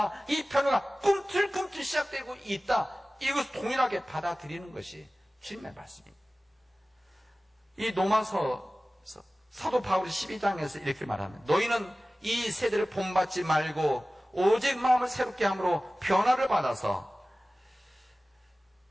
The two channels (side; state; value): both; normal; correlation 0.97